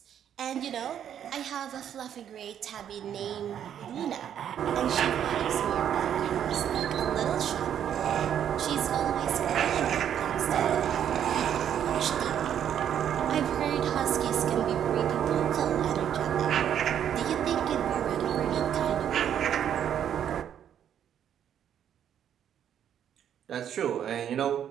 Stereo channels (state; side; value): quieter; left; 9.5 dB